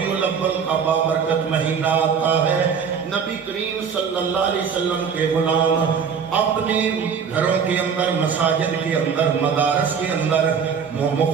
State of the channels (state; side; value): quieter; left; 6.6 dB